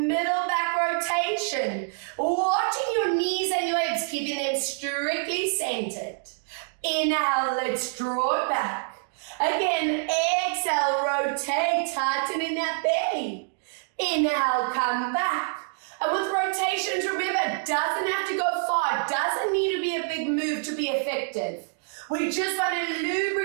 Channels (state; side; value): silent; left; digital silence